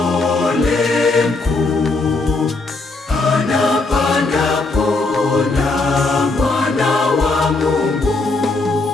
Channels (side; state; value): right; quieter; 3.4 dB